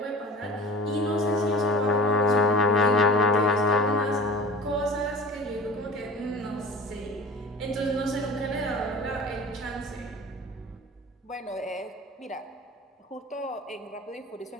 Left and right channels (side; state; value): both; normal; correlation 0.38